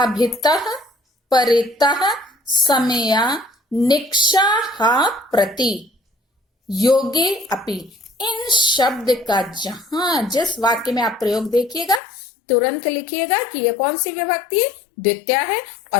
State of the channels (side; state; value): right; drops out; at 12.0 s